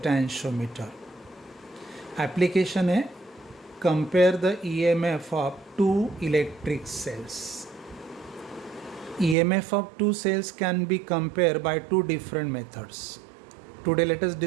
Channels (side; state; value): left; drops out; at 9.3 s